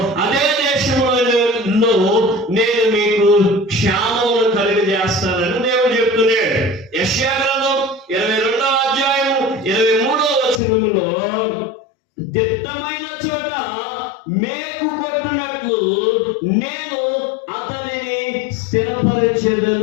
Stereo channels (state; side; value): drops out; right; at 10.6 s